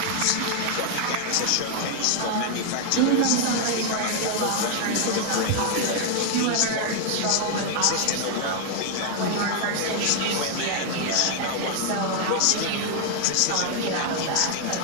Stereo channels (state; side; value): different; both; correlation 0.00